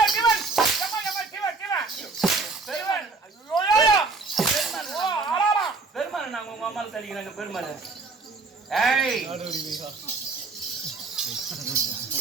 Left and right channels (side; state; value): left; quieter; 4.0 dB